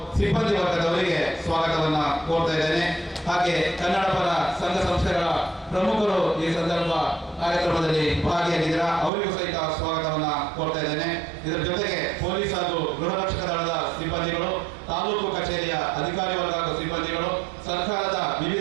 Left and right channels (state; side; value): drops out; left; at 9.1 s